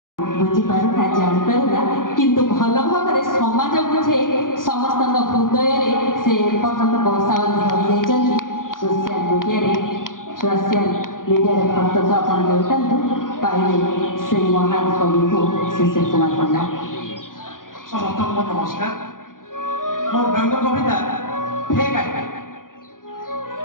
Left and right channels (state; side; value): late; right; 0.90 ms